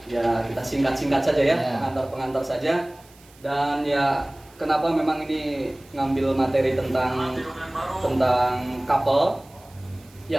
Ya, kita singkat-singkat saja ya, pengantar-pengantar saja. Dan ya, kenapa memang ini ngambil materi tentang couple?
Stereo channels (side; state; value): right; noise; hiss, 27 dB below the sound